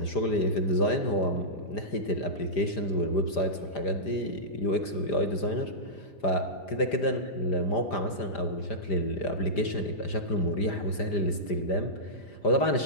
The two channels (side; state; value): right; late; 5.0 ms